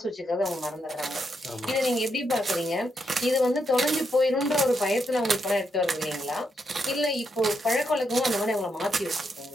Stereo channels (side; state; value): both; normal; correlation 0.80